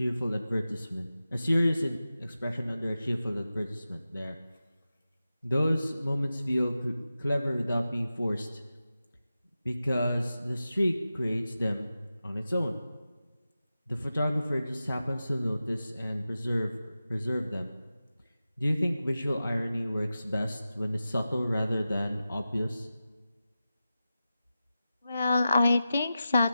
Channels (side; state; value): both; inverted; correlation -0.93